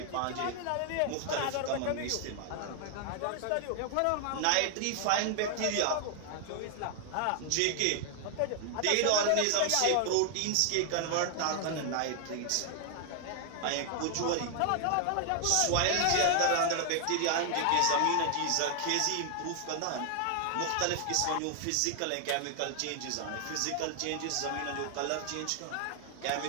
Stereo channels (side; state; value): both; different; correlation 0.00